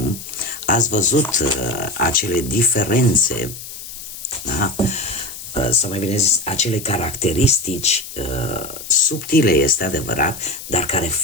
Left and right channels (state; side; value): noise; left; hiss, 12 dB below the sound